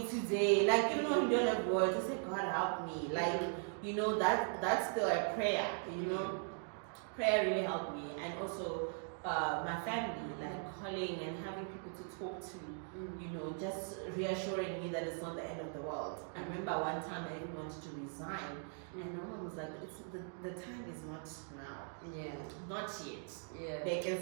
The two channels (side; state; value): left; silent; 51 dB below the other